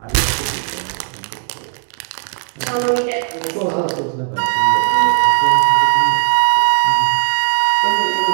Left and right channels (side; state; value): left; silent; 59 dB below the other